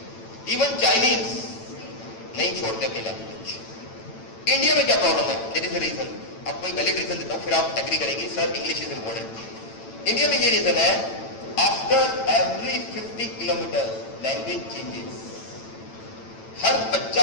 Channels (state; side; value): late; right; 9.0 ms